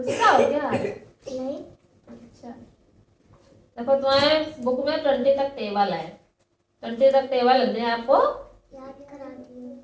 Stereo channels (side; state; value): both; identical; correlation 1.00